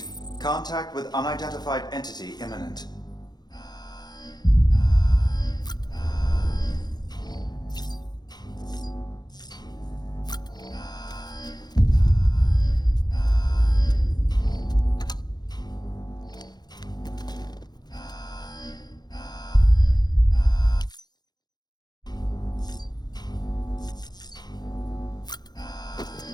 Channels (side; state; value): right; late; 0.20 ms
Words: contact with unidentified entity imminent.